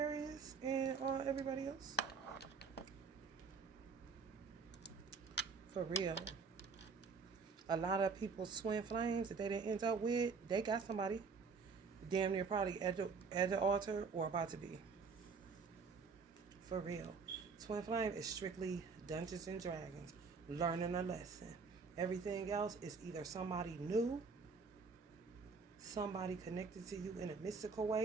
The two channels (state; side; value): quieter; left; 5.0 dB